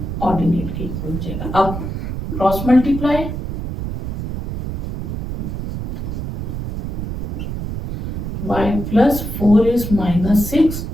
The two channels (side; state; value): right; noise; rumble, 5 dB below the sound